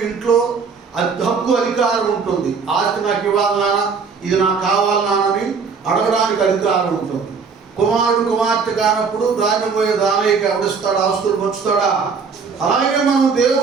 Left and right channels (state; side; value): quieter; left; 5.4 dB